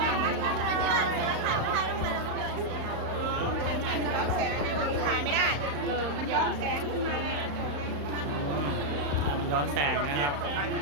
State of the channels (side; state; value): left; late; 35 ms